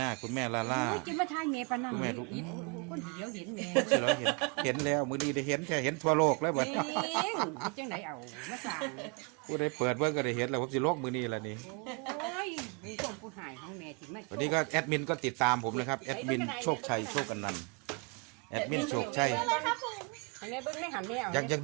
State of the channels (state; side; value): quieter; left; 32.2 dB